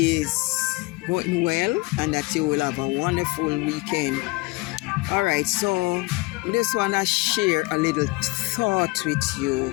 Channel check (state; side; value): quieter; right; 24.1 dB